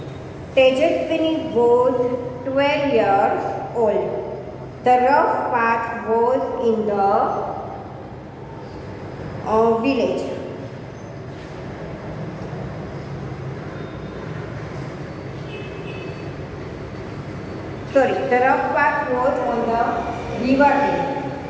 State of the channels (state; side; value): identical; both; correlation 1.00